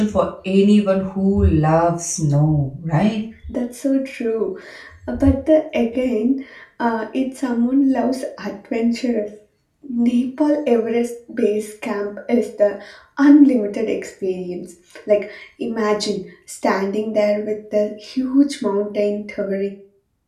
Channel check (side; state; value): both; identical; correlation 1.00